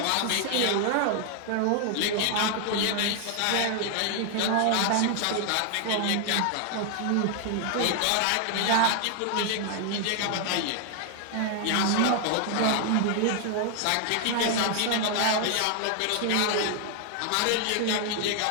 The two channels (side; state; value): both; different; correlation 0.00